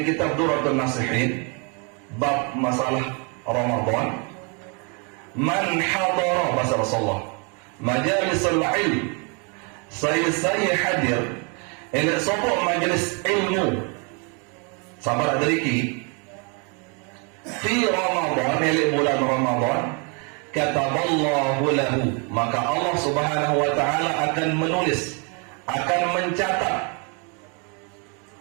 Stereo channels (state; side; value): quieter; left; 34.9 dB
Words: kitab Durratun Nasihin bab masalah Ramadan. Man hadara, bahasa Rasulullah, majalisul ilm, saya hadir elek sopok majelis ilmu sabar adariki fi Ramadan, elek bulan Ramadan, kataballahu lahu, maka Allah Subhanahu wa taala akan menulis, akan mencatat